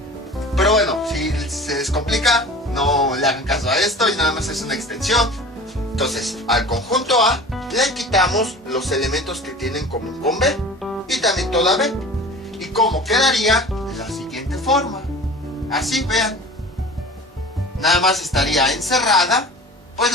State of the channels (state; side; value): normal; both; correlation 0.40